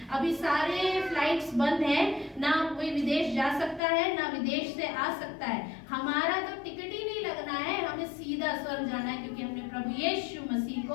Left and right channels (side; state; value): right; drops out; at 3.8 s